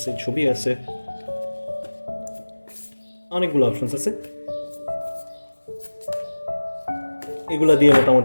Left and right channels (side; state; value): both; inverted; correlation -1.00